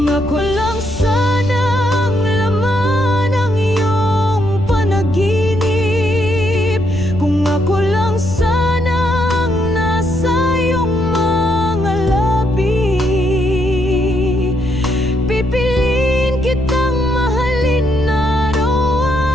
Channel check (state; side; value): noise; left; rumble, 10 dB below the sound